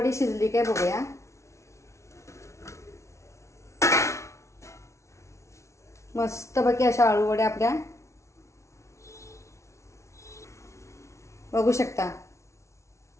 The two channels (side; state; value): right; late; 0.14 ms